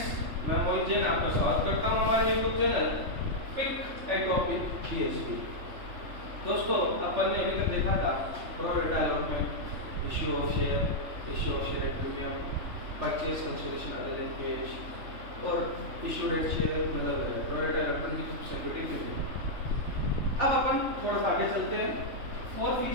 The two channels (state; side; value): late; left; 3.4 ms